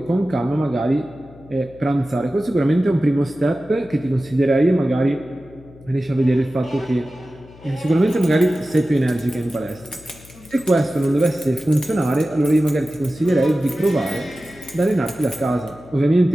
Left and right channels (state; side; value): noise; left; hum, 22 dB below the sound